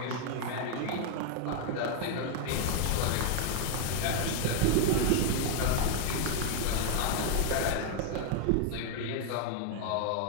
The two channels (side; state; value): both; different; correlation 0.00